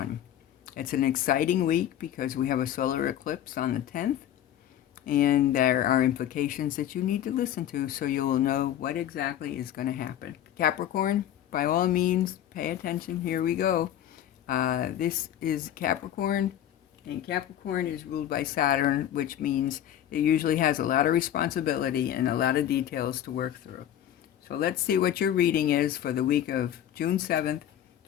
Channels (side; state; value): right; quieter; 11.2 dB